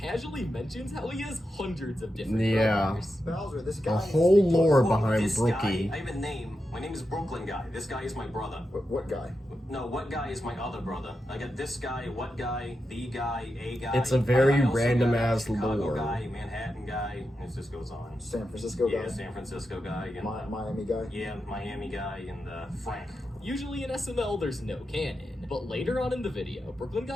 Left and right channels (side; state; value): both; normal; correlation 0.88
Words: mentions how he has hundreds of different Yeah. brothers. Bowser, this The guy. whole lore Well, behind this Brookie. guy, I have a name. My name is Brooklyn Guy. This guy is my brother. What guy? No, what guy is my other brother? I got this guy, what guy, the guy, a guy. It's a very I also random got ass Chicago lore. guy, Manhattan guy. It just goes on. San Francisco guy? Yeah, San Francisco guy. And, Miami guy? yeah, Miami guy and Frank. Usually in SML, there's no canon, but later on in the video, Brooklyn